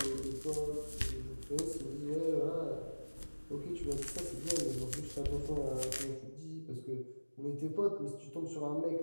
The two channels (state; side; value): inverted; both; correlation -1.00